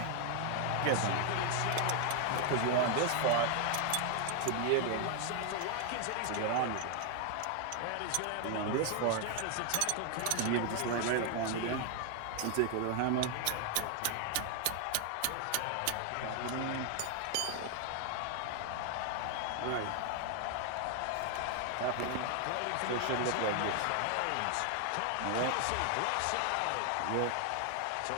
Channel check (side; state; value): both; different; correlation 0.00